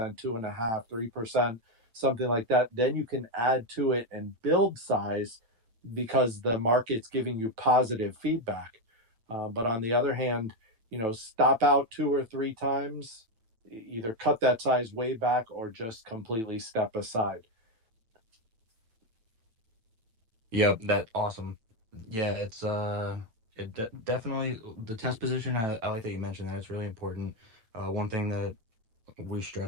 3%, something like that. Then you can add to it and build size because the market's giving you positive feedback. But on the other hand, stop out 2 or 3 times, either cut that size way back or just completely step aside. Yep, that awesome. Yeah, it's definitely the test position. I like that you mentioned that. It's really important. One thing that we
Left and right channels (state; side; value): late; left; 9.0 ms